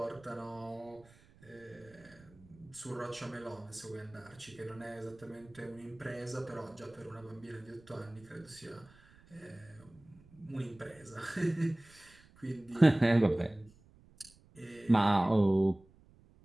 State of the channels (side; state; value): right; noise; rumble, 26 dB below the sound